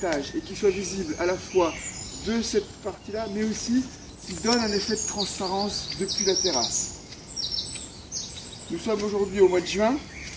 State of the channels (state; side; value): identical; both; correlation 1.00